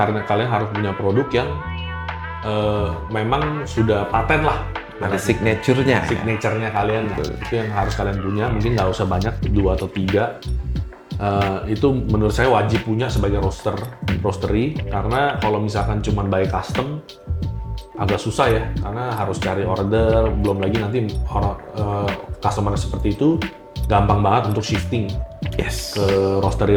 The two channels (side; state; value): both; identical; correlation 1.00